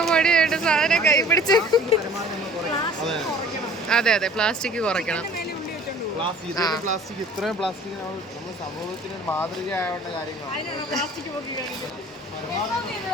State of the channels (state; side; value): normal; both; correlation 0.48